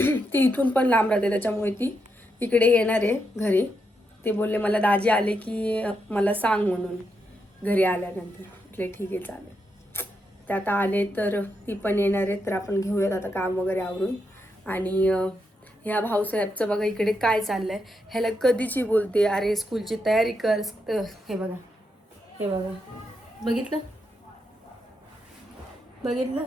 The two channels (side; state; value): both; normal; correlation 0.82